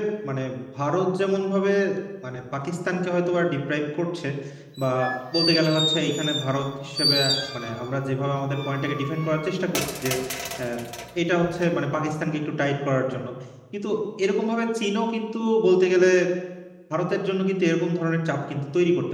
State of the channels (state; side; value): identical; both; correlation 1.00